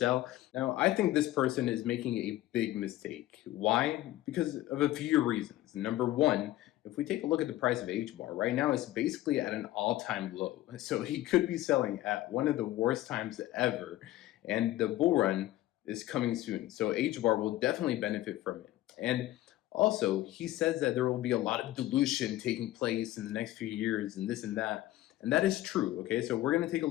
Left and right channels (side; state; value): right; quieter; 15.6 dB